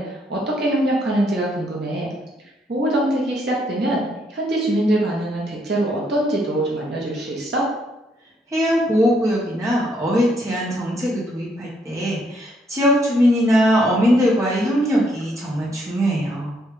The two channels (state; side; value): normal; both; correlation 0.72